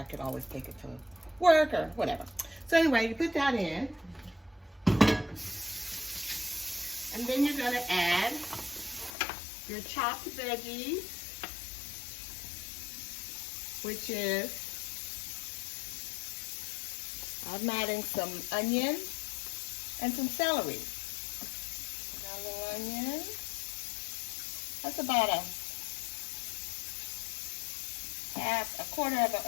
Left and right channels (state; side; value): drops out; right; at 9.2 s